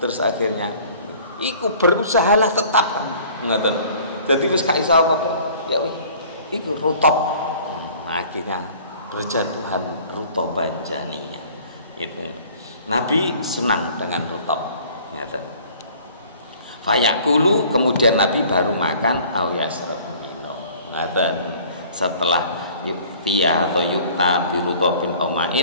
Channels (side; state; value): both; inverted; correlation -0.51